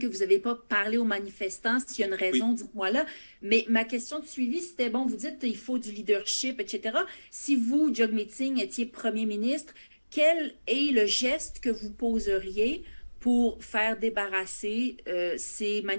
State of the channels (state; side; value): inverted; both; correlation -1.00